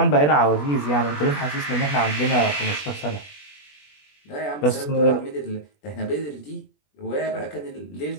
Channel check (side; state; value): right; late; 20 ms